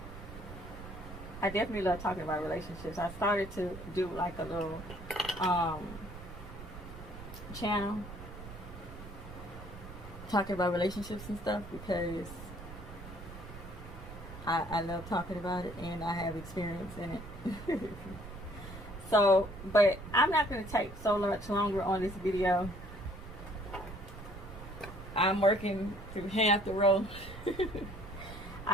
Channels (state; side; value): noise; right; rumble, 13 dB below the sound